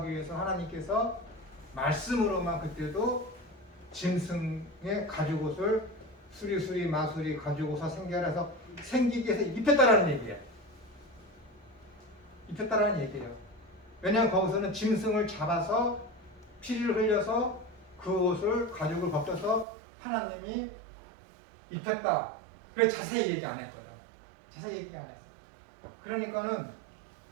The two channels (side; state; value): left; drops out; at 19.7 s